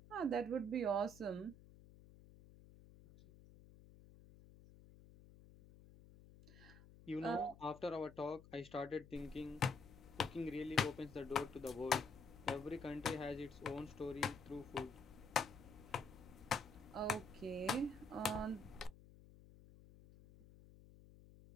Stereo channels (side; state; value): left; noise; hum, 19 dB below the sound